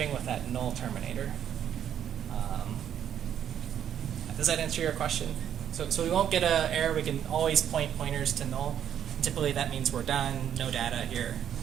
with that null terminator. Does that answer your question? So we won't get an error. We can always point pointers to null. Typically that means we're done, no data here.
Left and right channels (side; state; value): left; quieter; 9.6 dB